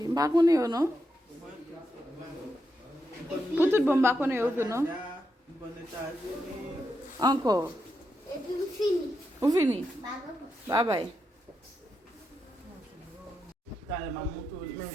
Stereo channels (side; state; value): both; normal; correlation 0.84